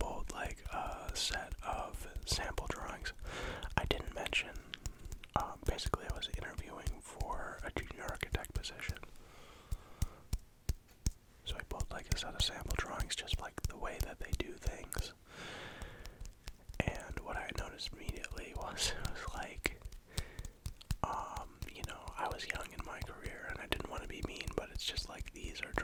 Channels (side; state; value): both; identical; correlation 1.00